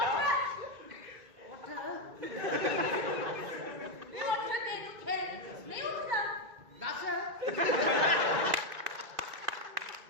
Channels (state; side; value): late; left; 2.5 ms